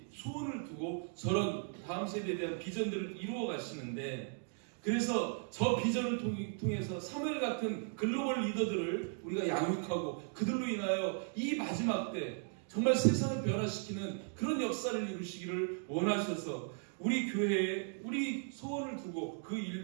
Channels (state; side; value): silent; left; 53 dB below the other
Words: 소원을 두고 저런 다음 세대에 대한 비전들을 이루어 가시는데, 그래서 저 비전을 통해서 사무엘 같은 글로벌 리더들을 우리가 양육하고 그들로 인하여 이 마지막 때 정말 세상을 변화시키는 그런 역사를 이루시기를 원하셔서 우리 교회에 우리 소원을 두고 그